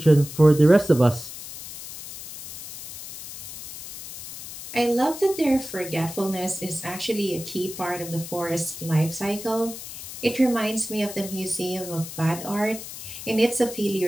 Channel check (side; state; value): left; noise; hiss, 11 dB below the sound